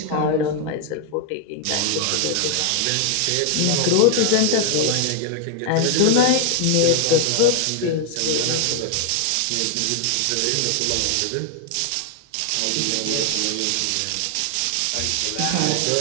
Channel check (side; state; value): both; different; correlation 0.00